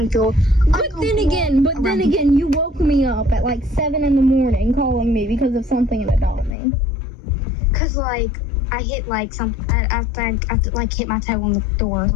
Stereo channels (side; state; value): right; drops out; at 6.5 s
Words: But then again, you woke me up at like 7 a.m. calling me because of something about me. Cause like I hit like something. I think I like hit my toe on the door or